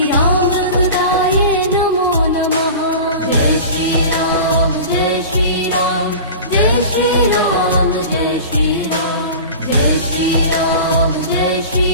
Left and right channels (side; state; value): both; inverted; correlation -0.35